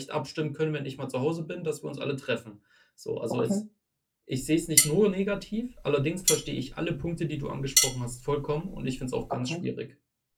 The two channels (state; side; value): identical; both; correlation 1.00